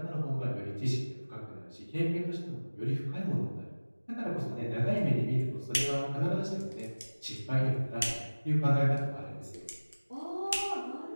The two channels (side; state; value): both; inverted; correlation -1.00